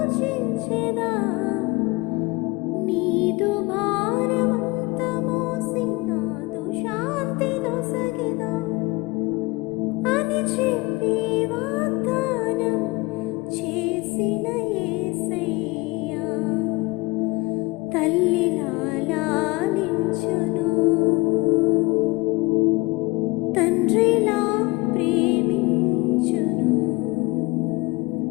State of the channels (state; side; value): quieter; right; 23.9 dB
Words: నీదు భారమంత మోసి నాదు శాంతి నొసగెదా అని చెప్పి వాగ్దానం చేసిన యేసయ్యా తల్లిలా లాలించును.